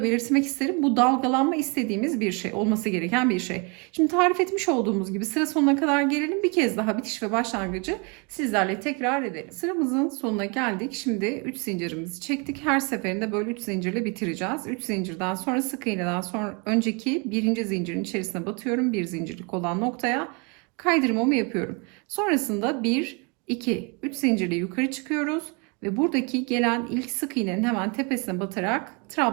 belirtmek isterim. Bu dalgalanma istediğimiz bir şey, olması gereken bir şey. Şimdi tarif etmiş olduğumuz gibi sıra sonuna kadar gelelim. Bir kez daha bitiş ve başlangıcı sizlerle tekrar edelim. Sıramızın sonuna geldik. Şimdi 3 zincirimizi çektik. Her seferinde böyle 3 zincirle bitireceğiz. 3 zincirden sonra sık iğneden sonra önceki birinci zincirin içerisine batıyorum. Bir zincirlik olan noktaya kaydırmamı yapıyorum. Sonrasında 1, 2, 3 zincirle yukarı çıkıyoruz. Ve buradaki gelen ilk sık iğnenin hemen tepesine batarak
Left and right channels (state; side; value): quieter; left; 32.4 dB